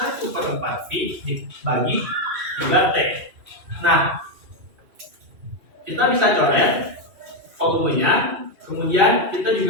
V dibagi 3T. Nah, kita bisa coret volumenya, kemudian kita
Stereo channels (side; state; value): left; late; 2.6 ms